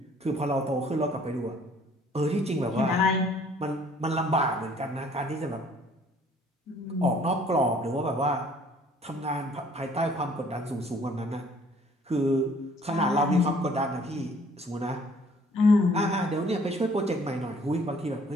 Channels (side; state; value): both; normal; correlation 0.57